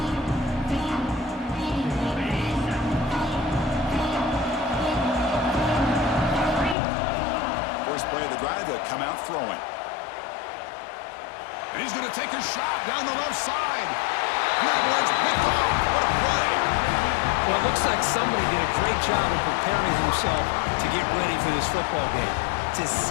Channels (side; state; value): right; drops out; at 6.8 s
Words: Play of the drive, they'll come out throwing. And he's going to take a shot down the left side. And that one's picked off. What a play. Well, it looks like somebody did a great job of preparing himself to get ready for this football game. It's his